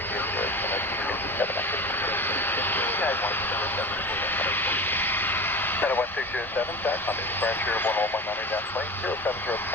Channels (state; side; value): normal; both; correlation 0.32